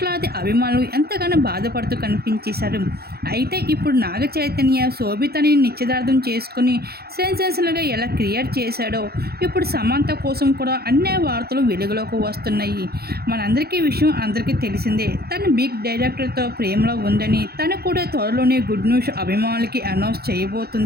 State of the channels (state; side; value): late; left; 0.46 ms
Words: అభిమానులు ఎంతగానో బాధపడుతూ కనిపించేశారు. అయితే ఇప్పుడు నాగ చైతన్య శోభితని నిశ్చితార్థం చేసుకుని సెన్సేషనల్గా ఎలా క్రియేట్ చేశాడో ఇప్పుడు సమంత కోసం కూడా అన్ని వార్తలు వెలుగులోకి వస్తున్నాయి. మనందరికీ విషయం అందరికీ తెలిసిందే. తను బిగ్ డైరెక్టర్తో ప్రేమలో ఉందని, తను కూడా త్వరలోనే గుడ్ న్యూస్ అభిమానులకి అనౌన్స్